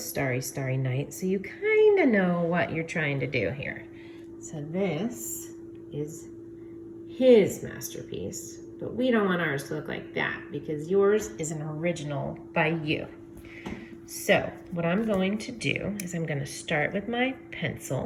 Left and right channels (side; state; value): both; identical; correlation 1.00